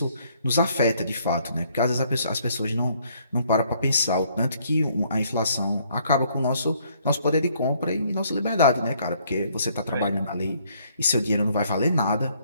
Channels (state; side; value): inverted; both; correlation -0.66